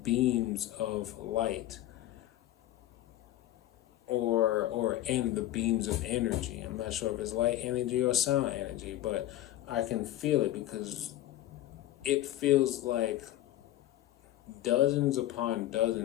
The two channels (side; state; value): right; quieter; 14.0 dB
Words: beams of light or in the beams of energy. I'm not sure if it's light energy or sound energy, but I can feel it because it feels like dozens upon